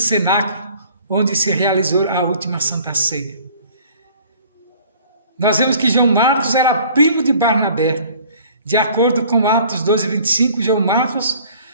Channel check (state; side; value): inverted; both; correlation -0.52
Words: onde se realizou a última Santa Ceia. Nós vemos que João Marcos era primo de Barnabé. De acordo com Atos 12:25, João Marcos